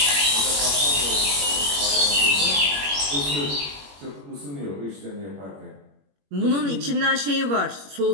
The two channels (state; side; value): late; left; 21 ms